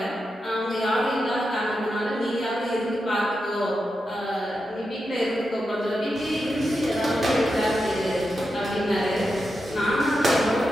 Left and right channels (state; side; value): normal; both; correlation 0.88